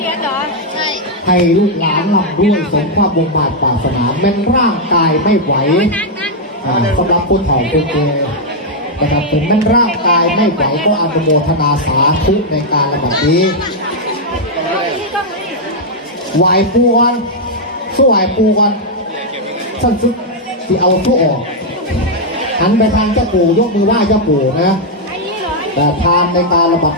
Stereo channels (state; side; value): normal; both; correlation -0.02